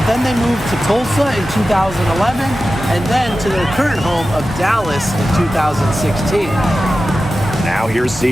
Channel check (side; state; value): both; normal; correlation 0.94